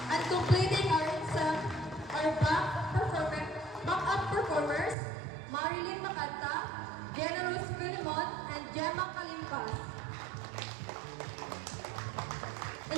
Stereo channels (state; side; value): drops out; left; at 5.0 s